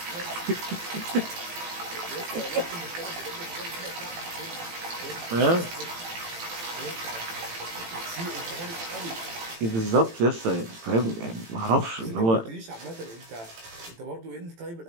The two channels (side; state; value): left; late; 18 ms